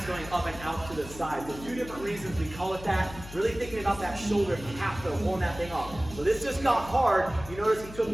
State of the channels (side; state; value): left; noise; hum, 14 dB below the sound